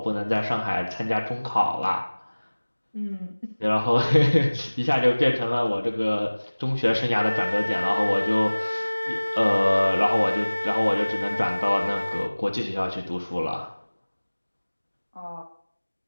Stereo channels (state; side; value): inverted; both; correlation -1.00